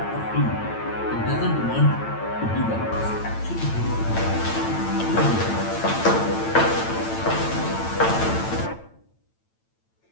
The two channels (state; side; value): late; right; 8.9 ms